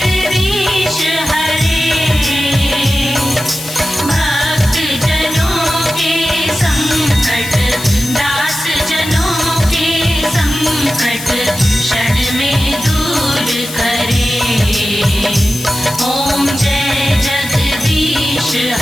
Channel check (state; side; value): noise; left; hiss, 11 dB below the sound